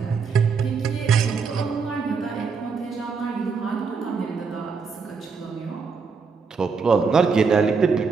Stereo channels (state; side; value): quieter; left; 5.2 dB